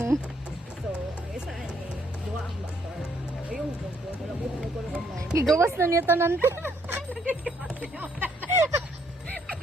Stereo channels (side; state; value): both; normal; correlation 0.69